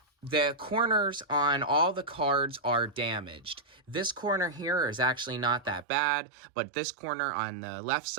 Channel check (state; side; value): drops out; left; at 5.9 s